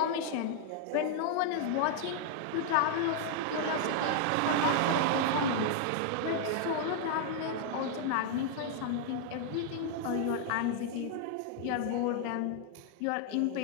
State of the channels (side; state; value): both; different; correlation 0.00